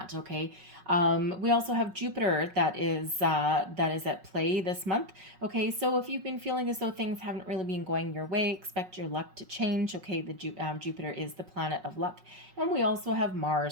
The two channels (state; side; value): late; left; 5.4 ms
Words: Okay, we also have Jupiter that is at play this month. Okay, so if you've been feeling as though things haven't really been going your way, expect your luck to change. Okay, the Jupiter is the planet of luck, and we also have